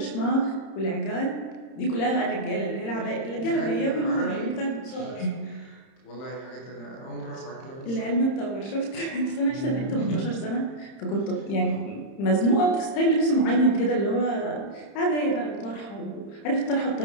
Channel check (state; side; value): late; right; 30 ms